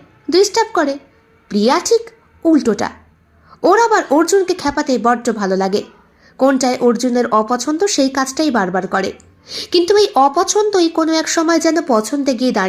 ডিস্টার্ব করে, প্রিয়া ঠিক উল্টোটা। ওর আবার অর্জুনকে খেপাতে বড্ড ভালো লাগে। কোনটায় অর্জুনের অপছন্দ সেই কাজটাই বারবার করে। কিন্তু এই অপছন্দই কোনো এক সময় যেন পছন্দে গিয়ে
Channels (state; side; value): identical; both; correlation 1.00